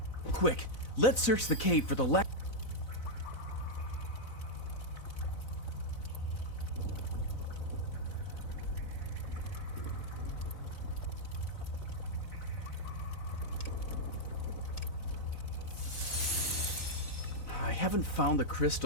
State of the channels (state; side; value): late; right; 4.0 ms